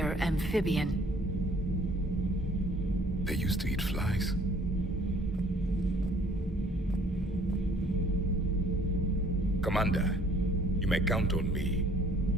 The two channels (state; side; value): normal; both; correlation 0.57